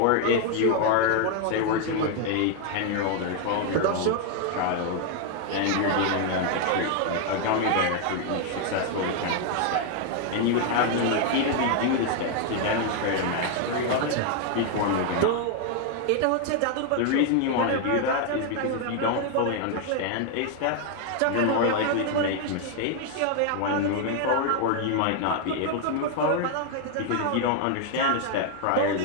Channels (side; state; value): both; different; correlation 0.01